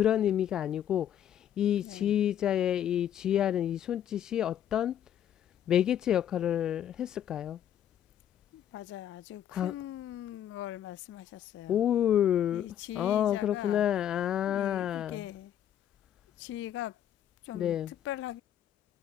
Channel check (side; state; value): right; quieter; 10.4 dB